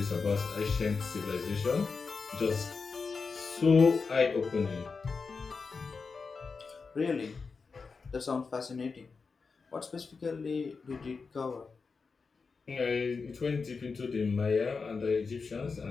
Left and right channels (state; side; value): quieter; right; 4.8 dB